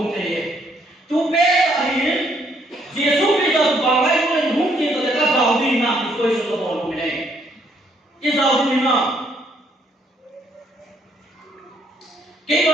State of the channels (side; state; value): both; normal; correlation 0.69